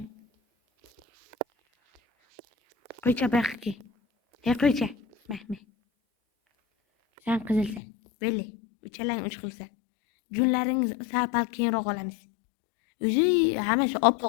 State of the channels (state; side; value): drops out; right; at 7.8 s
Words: Qo'ycha bu yoqqa kel. Hey, qo'ycha. Mahmud. Sen qizilsan. Böyle. Uchalang uch xilsan. Junlaringiz sal keyinroq olamiz. O'zi hammasi